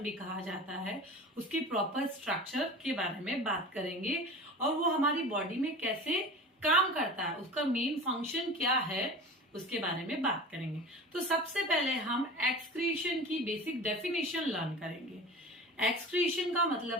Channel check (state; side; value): normal; both; correlation 0.36